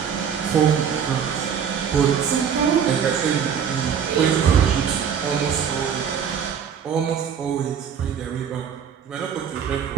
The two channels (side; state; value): left; quieter; 7.7 dB